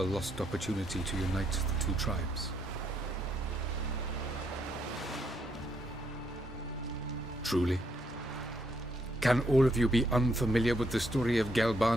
lost opportunity to unite the two tribes. Truly? Can all of you be unfamiliar with the story of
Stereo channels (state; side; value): normal; both; correlation 0.75